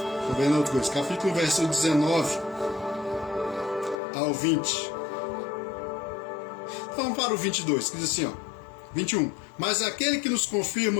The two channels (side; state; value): right; drops out; at 4.0 s